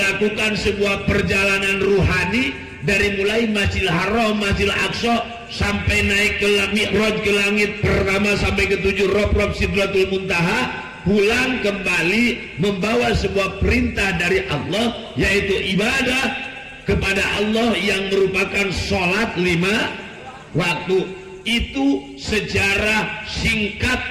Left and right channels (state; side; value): identical; both; correlation 1.00